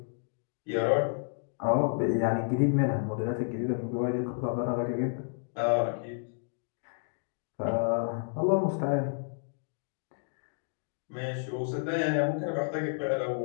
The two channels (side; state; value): right; silent; digital silence